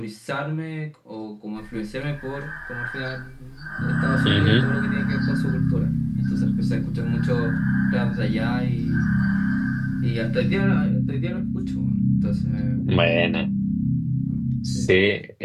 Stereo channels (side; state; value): both; identical; correlation 1.00